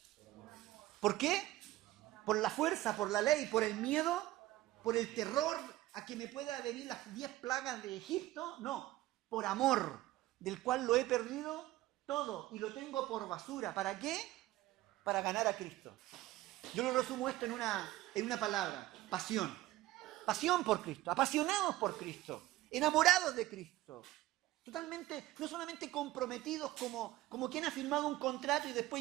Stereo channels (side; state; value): left; quieter; 16.6 dB